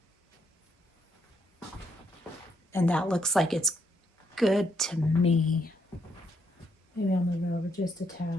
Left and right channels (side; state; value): both; normal; correlation 0.75